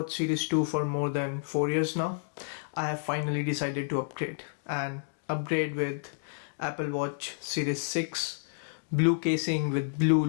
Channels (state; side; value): silent; right; digital silence